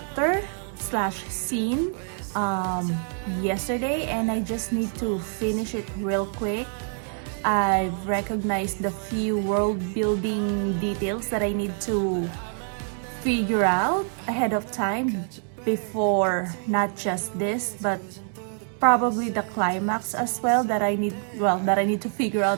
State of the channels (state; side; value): silent; left; 59 dB below the other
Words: slash scene yesterday, and I just need to finish it real quick. I've recognized the few world building details that I need to figure out ahead of time before not just this but probably the climax as well that I need to figure